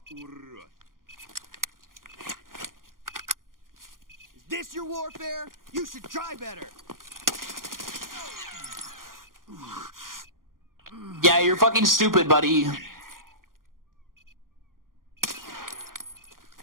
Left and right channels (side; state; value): left; late; 0.91 ms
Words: Урод. Is this your warfare? You should try better! Yeah, you're fucking stupid, buddy.